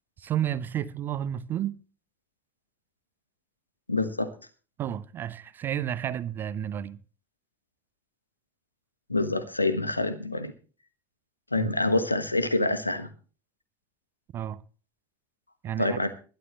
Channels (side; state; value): both; inverted; correlation -0.44